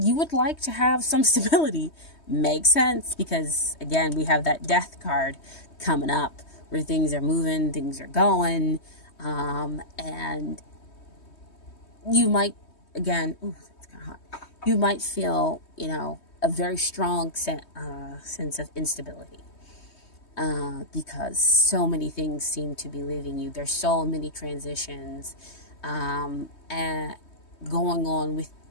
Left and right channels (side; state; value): right; late; 3.2 ms